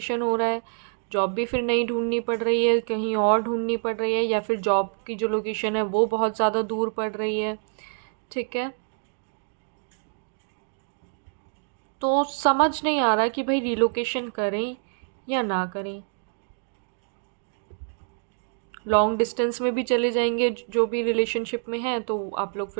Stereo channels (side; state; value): left; silent; digital silence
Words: हो रहा है। जॉब भी फिर नई ढूंढनी पड़ रही है, कहीं और ढूंढनी पड़ रही है, या फिर जॉब की जो लोकेशन है वो बहुत ज़्यादा दूर पड़ रही है, ठीक है। तो समझ नहीं आ रहा कि भाई रीलोकेशन करें या ना करें। लॉन्ग डिस्टेंस में भी चले जाएंगे, जो भी रिलेशनशिप में है, तो आप लोग